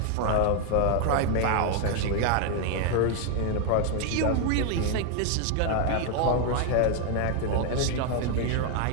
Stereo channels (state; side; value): different; both; correlation 0.01